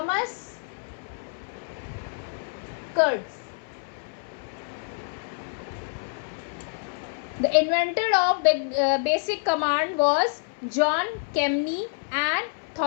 Kurtz. The inventor of basic command was John Kemeny and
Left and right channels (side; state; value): right; silent; 60 dB below the other